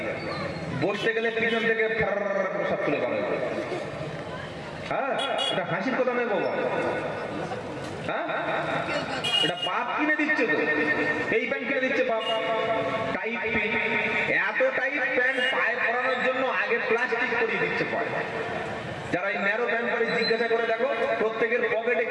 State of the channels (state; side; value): identical; both; correlation 1.00